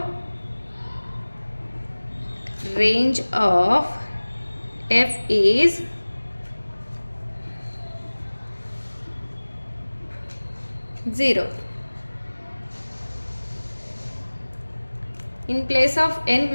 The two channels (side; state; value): both; inverted; correlation -1.00